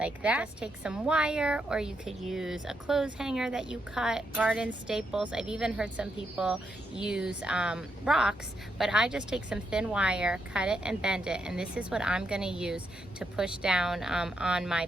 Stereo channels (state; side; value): normal; both; correlation 0.80